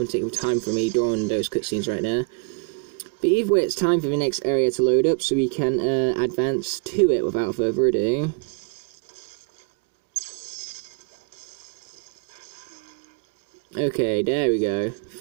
taking time for me drawing those cutscenes right now. But either way, it's time for the next area to load up, so we can advance to it without further ado. Okay, there we go.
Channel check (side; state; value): left; quieter; 36.9 dB